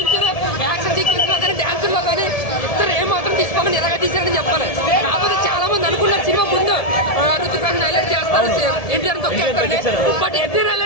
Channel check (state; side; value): late; right; 1.7 ms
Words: యాక్షన్ సీక్వెన్స్ లో కానీ డాన్స్ లో కానీ ఇద్దరు ఏం మాత్రం తీసుకోమని ఎలాగ తీసారని చెప్పాలి. కాకపోతే చాలా మంది అనుకున్నారు సినిమా ముందు రుతిక్ రోషన్ హైలైట్ చేస్తారు, ఎన్టీఆర్ తొక్కేస్తారు. బట్ ఎన్టీఆర్